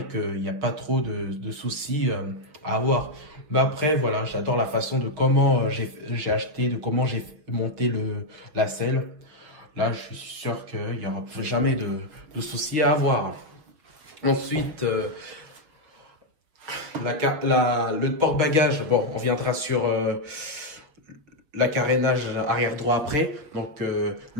qu'il n'y a pas trop de soucis à avoir. Mais après, voilà, j'adore la façon de comment j'ai acheté, de comment j'ai monté la selle. Là, je suis sûr qu'il n'y aura jamais de soucis à avoir. Ensuite, le porte-bagages, bon, on viendra sur la carénage arrière droit après. Donc,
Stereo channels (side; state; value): left; late; 6.0 ms